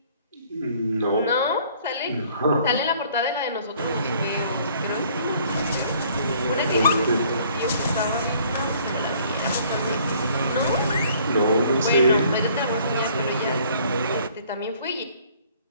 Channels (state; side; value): inverted; both; correlation -0.58